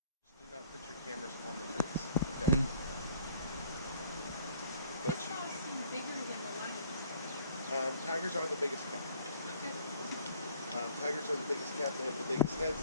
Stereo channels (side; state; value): both; inverted; correlation -0.56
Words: Tigers are the biggest cat. Tigers are the biggest cat. They have the biggest heads,